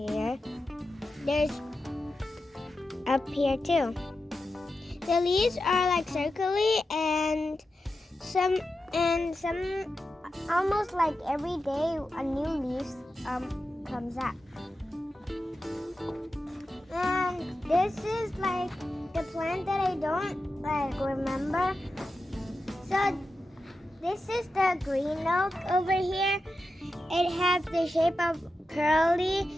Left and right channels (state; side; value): normal; both; correlation 0.90